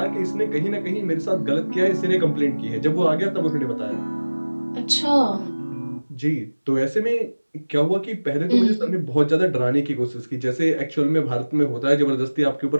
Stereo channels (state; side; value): inverted; both; correlation -1.00